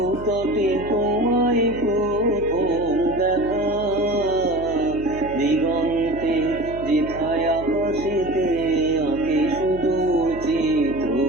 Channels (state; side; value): noise; right; hum, 14 dB below the sound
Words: তটে তোমায় প্রথম দেখা। দিগন্তে যেথায় আকাশেতে আঁকে সুদূর চিত্র